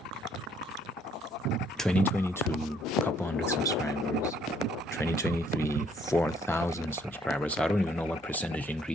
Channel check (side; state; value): both; normal; correlation 0.65